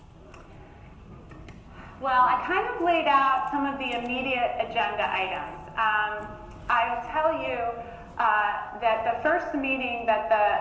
Well, I kind of laid out some of the immediate agenda items. I'll tell you that the first meeting that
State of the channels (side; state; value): both; identical; correlation 1.00